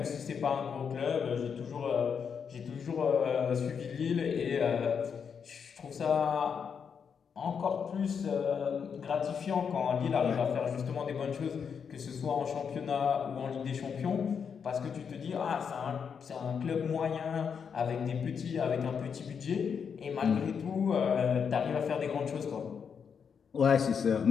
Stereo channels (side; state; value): right; quieter; 6.7 dB